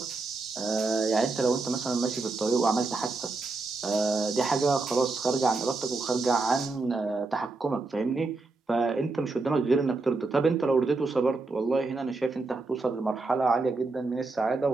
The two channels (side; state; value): left; quieter; 3.6 dB